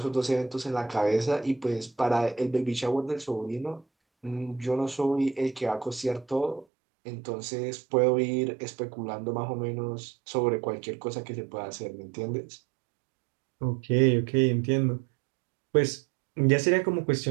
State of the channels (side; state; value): left; drops out; at 6.7 s